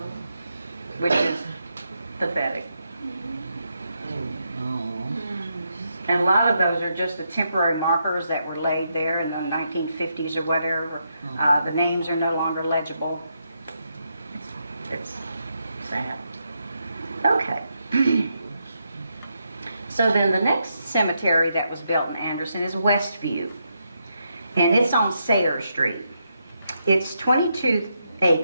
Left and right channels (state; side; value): inverted; both; correlation -0.81